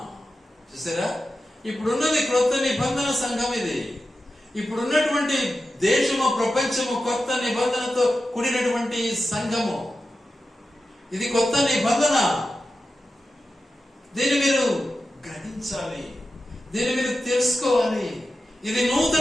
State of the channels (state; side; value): normal; both; correlation 0.91